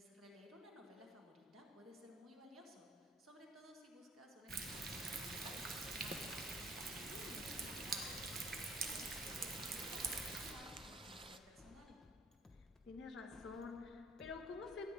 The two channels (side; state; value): both; normal; correlation 0.59